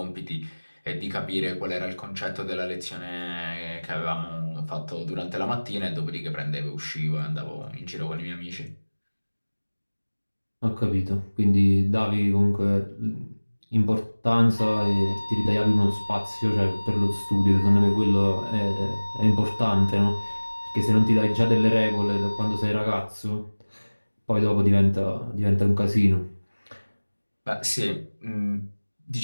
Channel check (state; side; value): inverted; both; correlation -1.00